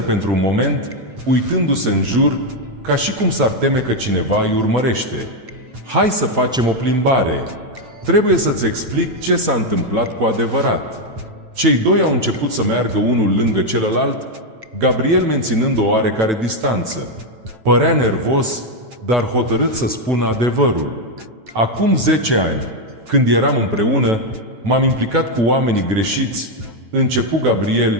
un moment, uitându-se în jur, ca și cum s-ar teme că cineva îi urmărește. Hai să facem o plimbare. Trebuie să-ți explic ce s-a întâmplat cu adevărat. Cei doi au început să meargă unul lângă celălalt, Gabriel menținând o oarecare distanță. Părea nervos, dar hotărât să spună adevărul. Acum 10 ani, când eram împreună, m-am implicat cu oamenii greșiți, începu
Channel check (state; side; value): late; left; 9.1 ms